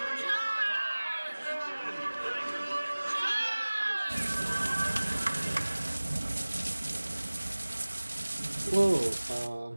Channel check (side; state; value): both; inverted; correlation -1.00